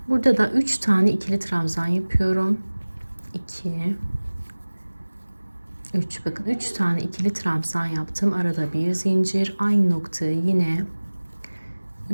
Burada da 3 tane ikili trabzan yapıyorum. 2, 3, bakın 3 tane ikili trabzan yaptım. Arada bir zincir, aynı noktaya yine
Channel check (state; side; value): inverted; both; correlation -1.00